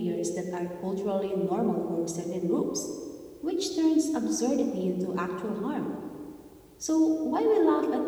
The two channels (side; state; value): both; identical; correlation 1.00